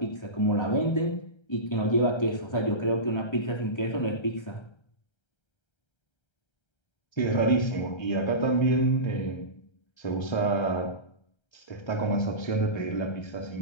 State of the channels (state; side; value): late; right; 1.3 ms